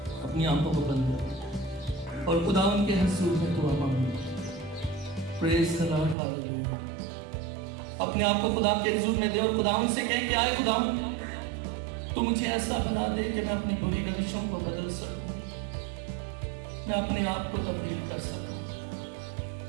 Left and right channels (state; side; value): drops out; left; at 6.2 s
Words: اپنی آنکھوں کو بند کریں اور خداوند کے حضور میں دعا مانگیں. پریز دی لارڈ، ہاللیلویا. اپنے آپ کو خدا کے حضور میں دے اور خداوند سے کہیں کہ آئے خداوند، تو مجھے ایسا بنا دے کہ میں اپنی بری روشوں کو بدل سکوں، میں اپنے آپ کو تبدیل کر سکوں،